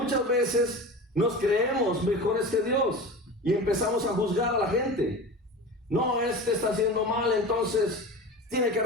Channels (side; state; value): both; normal; correlation 0.32